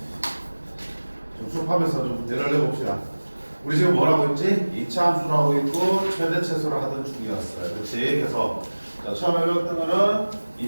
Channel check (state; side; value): inverted; both; correlation -1.00